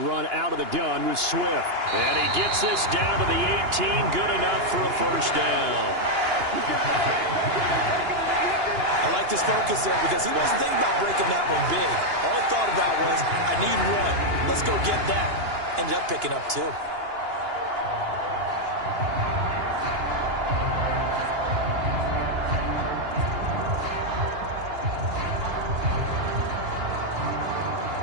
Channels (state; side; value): late; left; 2.9 ms